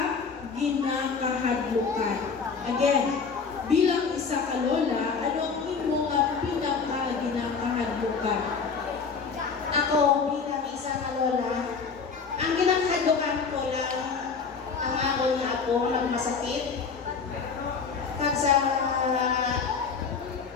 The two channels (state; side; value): quieter; right; 5.4 dB